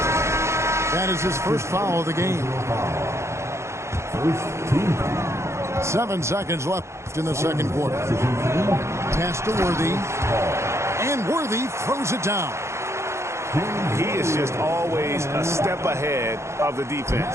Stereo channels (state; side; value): late; left; 0.13 ms